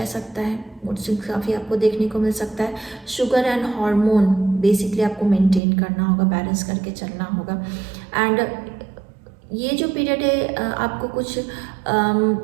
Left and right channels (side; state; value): left; drops out; at 5.6 s